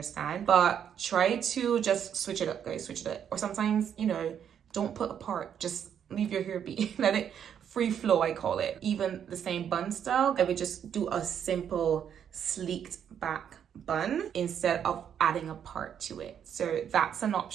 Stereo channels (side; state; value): left; quieter; 8.7 dB